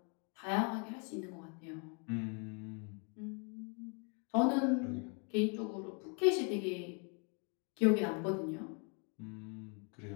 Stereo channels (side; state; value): right; quieter; 36.0 dB